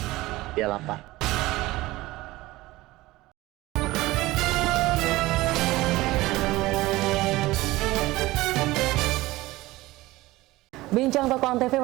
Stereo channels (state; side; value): quieter; left; 18.7 dB